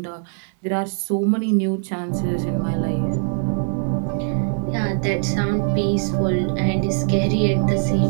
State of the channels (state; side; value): silent; left; digital silence